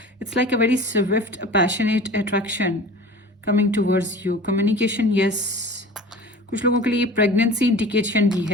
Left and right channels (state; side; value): normal; both; correlation 0.39